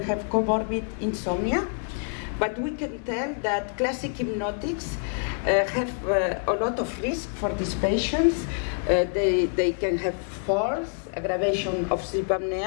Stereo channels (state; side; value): silent; right; 56 dB below the other